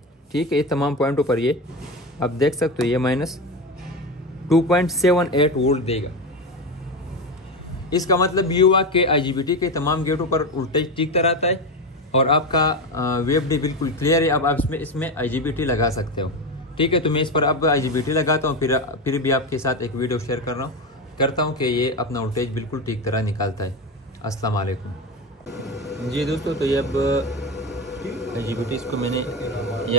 ठीक है, ये तमाम पॉइंटों पर ये आप देख सकते हो, ये -2.78 वोल्ट देगा। इसका मतलब ये हुआ कि IGBT के तमाम गेटों पर वोल्टेज टिकता रहता है और आपका VFD बिल्कुल क्लियर है। अब आप इसमें IGBT लगा सकते हो। ठीक है, तो मैं इस पर अब IGBT लगाता हूँ, फिर भी आपके साथ एक वीडियो शेयर करता हूँ कि ये अपना वोल्टेज बिल्कुल ठीक तरह निकालता है। अस्सलाम वालेकुम। जी दोस्तों, तो ये अब IGBT इसको मैंने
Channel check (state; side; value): normal; both; correlation 0.18